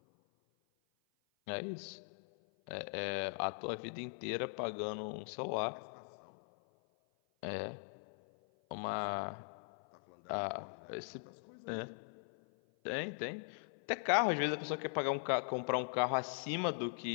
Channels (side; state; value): right; silent; 51 dB below the other